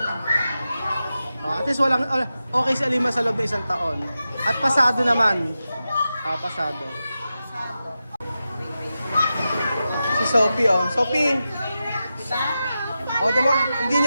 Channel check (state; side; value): inverted; both; correlation -0.91